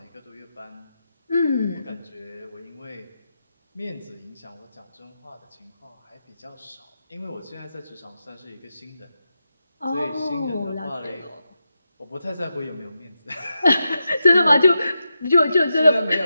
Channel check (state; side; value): inverted; both; correlation -0.88